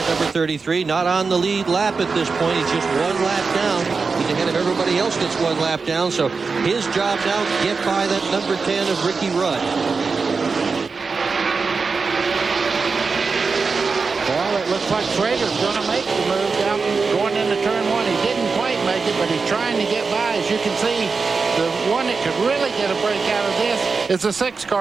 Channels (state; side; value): quieter; left; 4.7 dB